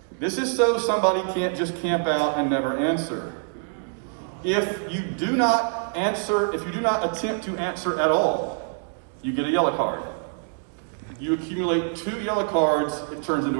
This is so somebody can't just camp out and never answer. If you do not attempt to answer at all, you get a yellow card. You accumulate 2 yellow cards, it turns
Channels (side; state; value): left; silent; 58 dB below the other